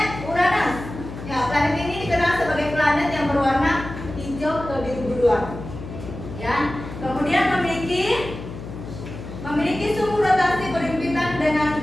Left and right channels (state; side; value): noise; left; hum, 11 dB below the sound